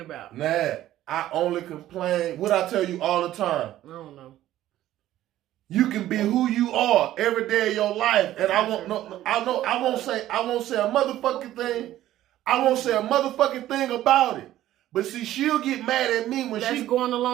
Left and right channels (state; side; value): quieter; left; 13.7 dB